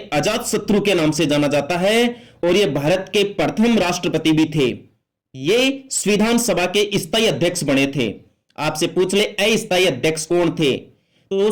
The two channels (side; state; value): both; identical; correlation 1.00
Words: अजात शत्रु के नाम से जाना जाता है, और ये भारत के प्रथम राष्ट्रपति भी थे। ये संविधान सभा के स्थायी अध्यक्ष बने थे। आपसे पूछ ले अस्थायी अध्यक्ष कौन थे? तो